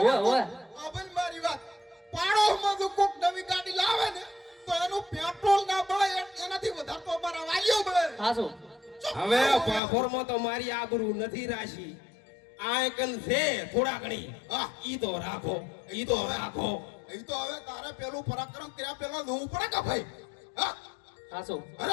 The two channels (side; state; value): right; drops out; at 9.8 s